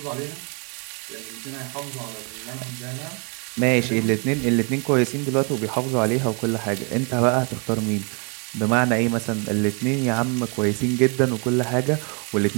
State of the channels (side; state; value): left; quieter; 35.4 dB